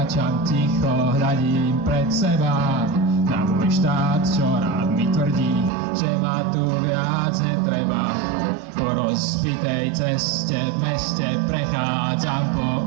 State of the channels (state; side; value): drops out; left; at 5.7 s